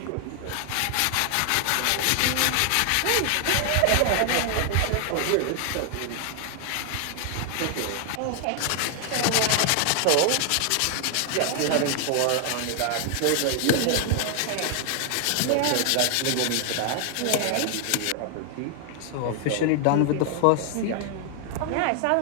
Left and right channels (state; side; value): different; both; correlation 0.00